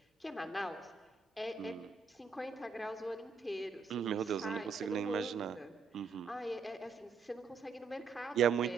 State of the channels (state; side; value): quieter; left; 4.9 dB